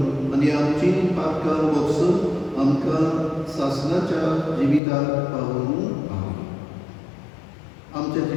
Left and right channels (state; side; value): drops out; right; at 4.8 s